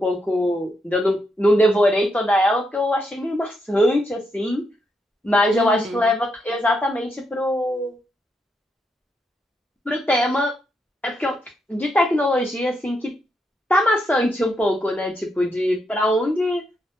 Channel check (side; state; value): both; normal; correlation 0.80